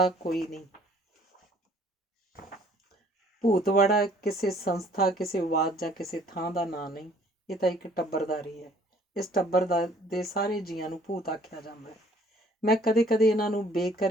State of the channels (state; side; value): normal; both; correlation 0.58